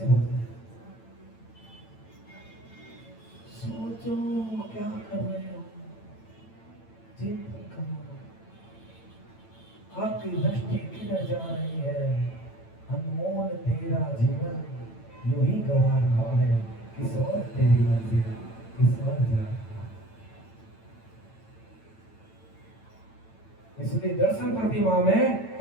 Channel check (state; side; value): late; right; 9.0 ms